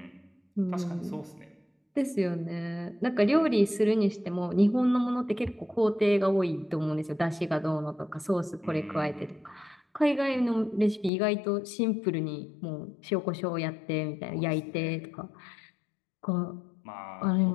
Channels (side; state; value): right; drops out; at 11.1 s